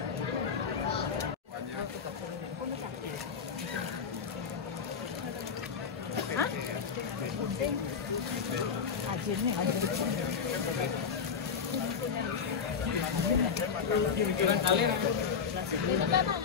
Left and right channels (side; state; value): right; quieter; 6.3 dB